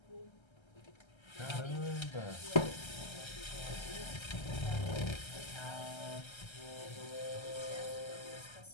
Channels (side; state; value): right; late; 1.3 ms